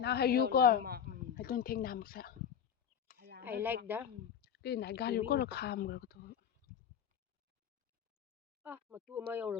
hay you go. I don't think nam sa. I like that Cái này gan you go là kham rồi thôi. matu ma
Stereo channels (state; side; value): quieter; right; 8.2 dB